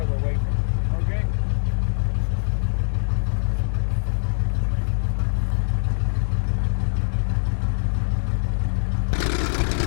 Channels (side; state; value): right; silent; digital silence